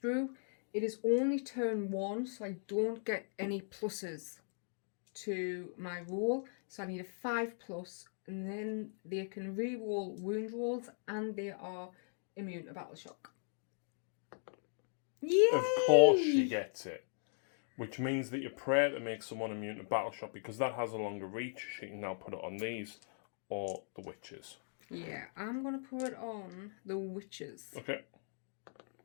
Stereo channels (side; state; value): right; silent; digital silence